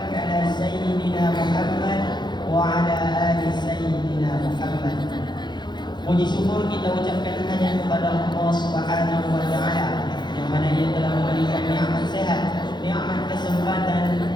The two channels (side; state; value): right; late; 0.21 ms